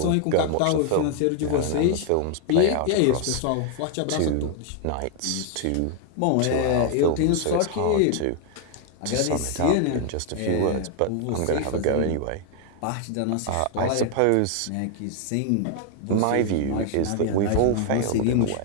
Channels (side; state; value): both; different; correlation 0.00